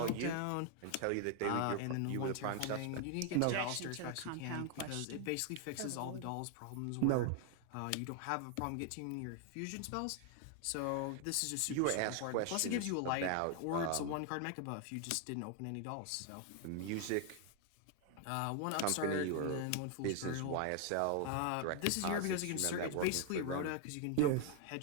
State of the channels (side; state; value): both; different; correlation 0.00